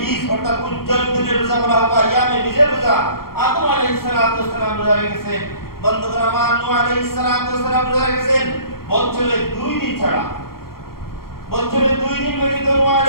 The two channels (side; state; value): right; late; 0.93 ms